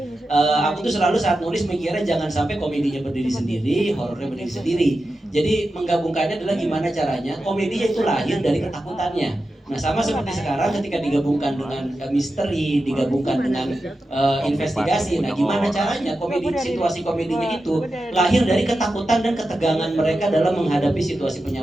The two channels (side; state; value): both; normal; correlation 0.91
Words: aku tuh selalu saat nulis mikirnya jangan sampai komedinya berdiri sendiri, horornya berdiri sendiri. Jadi menggabungkannya adalah gimana caranya komedinya itu lahir dari ketakutannya. Nah sama seperti sekarang ketika digabungkan dengan misteri, digabungkan dengan investigasi. Nah gimana caranya situasi komedinya itu lahir dari ketakutan dan ketegangan mereka dalam menghadapi situasi